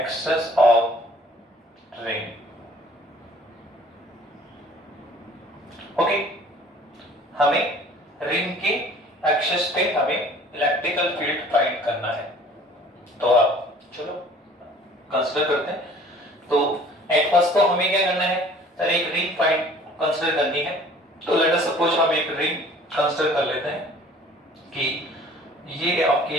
of ring. Okay, हमें रिंग के एक्सेस पे हमें इलेक्ट्रिकल फील्ड फाइंड करना है। तो आप चलो कंसीडर करते हैं। तो एट फर्स्ट तो हमें क्या करना है? सर एक रिंग फाइंड कंसीडर करनी है। तो लेट अस सपोज हम एक रिंग कंसीडर कर लेते हैं कि ये आपकी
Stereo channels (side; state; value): both; normal; correlation 0.51